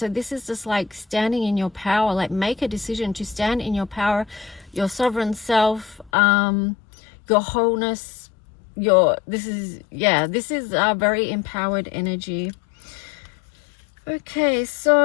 this is just like standing in your power. Like, make a decision to stand in your power, your sovereign self, your wholeness, this is a very empowered energy. Okay,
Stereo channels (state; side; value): drops out; right; at 6.1 s